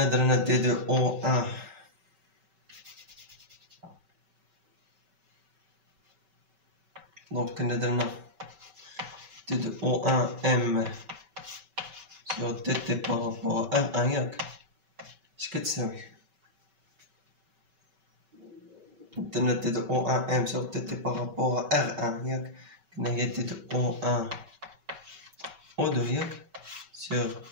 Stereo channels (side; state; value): left; late; 5.3 ms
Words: درنا دي دو او 1 دونك كنا درنا دي دو او 1 ام sur tt par rapport à R1 ياك اش كتساوي درنا دي دو او 1 ام sur tt par rapport à R1 ياك كنا هي دي دو او 1 او 2 ياك sur